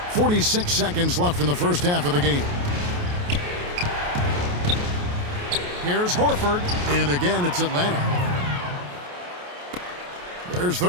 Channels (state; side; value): late; left; 28 ms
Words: 46 seconds left in the first half of the game. Here's Horford, and again it's Atlanta. There's